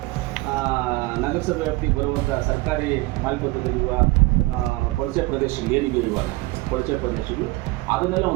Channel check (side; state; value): left; quieter; 21.4 dB